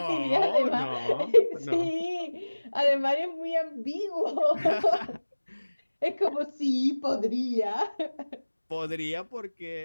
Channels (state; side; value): inverted; both; correlation -1.00